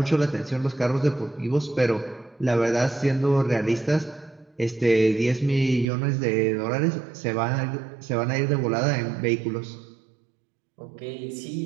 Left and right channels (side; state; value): left; drops out; at 5.9 s